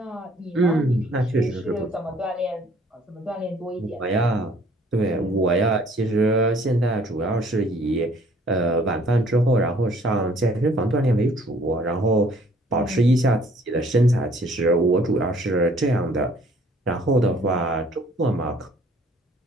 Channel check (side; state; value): both; normal; correlation 0.58